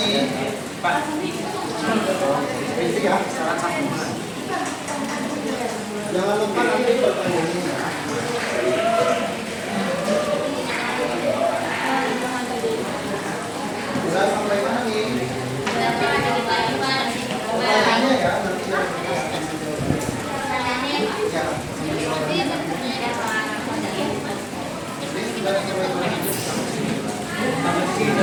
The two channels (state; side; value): identical; both; correlation 1.00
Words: Pak, Basic ya. Jangan lupa nanti pertanyaannya ya. Udah sampai mana nih? Pertanyaannya ya nanti. Ya. Ini sudah dicoba.